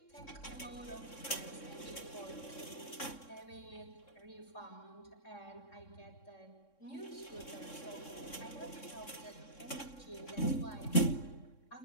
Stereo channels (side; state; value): right; late; 3.6 ms